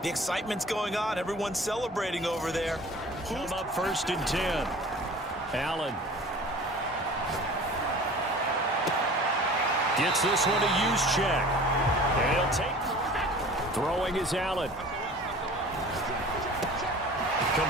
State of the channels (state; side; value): normal; both; correlation 0.43